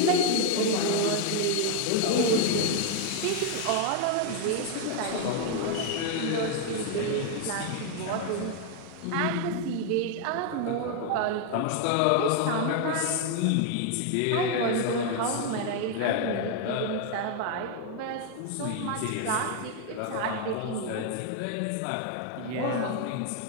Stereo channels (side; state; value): both; different; correlation 0.00